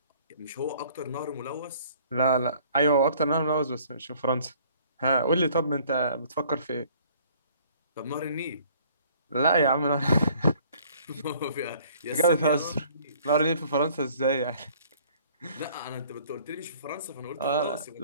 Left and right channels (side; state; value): both; inverted; correlation -0.56